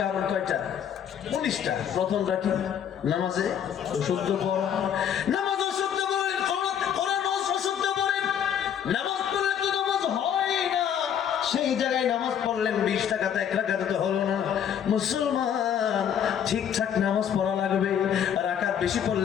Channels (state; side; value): quieter; right; 8.8 dB